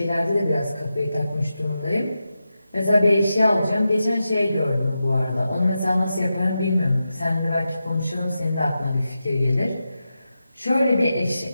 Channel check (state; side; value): inverted; both; correlation -0.90